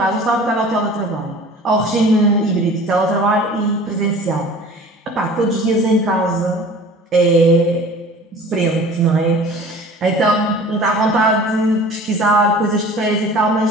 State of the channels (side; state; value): both; normal; correlation 0.44